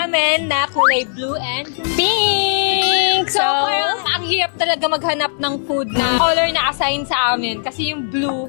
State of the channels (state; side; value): silent; right; digital silence